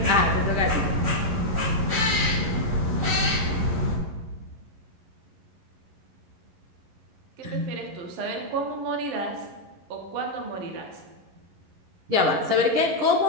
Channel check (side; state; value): left; late; 11 ms